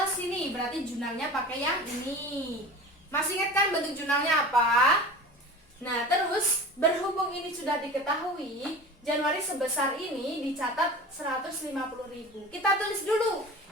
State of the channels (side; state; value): both; normal; correlation 0.36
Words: sini. Berarti jurnalnya pakai yang ini. Masih ingat kan bentuk jurnalnya apa? Nah, terus berhubung ini sudah diketahui, Januari sebesar ini dicatat 150.000. Kita tulis dulu.